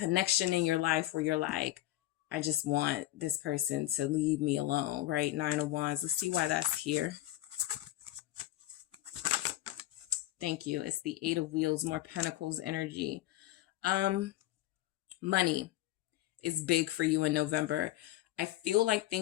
in your life where you're like, I just want this person to leave me alone, right? 9 of Wands. Let's see why that's here. Thank you. It's the 8 of Wheels, more Pentacles energy. Money is big for you in November. I feel like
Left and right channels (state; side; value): quieter; right; 15.7 dB